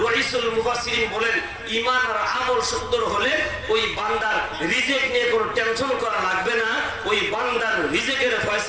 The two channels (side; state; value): both; identical; correlation 1.00